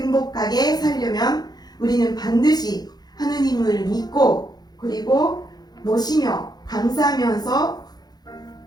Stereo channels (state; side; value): late; right; 0.19 ms